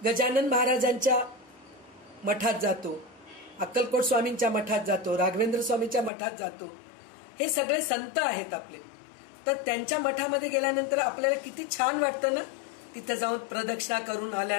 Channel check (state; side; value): drops out; right; at 6.1 s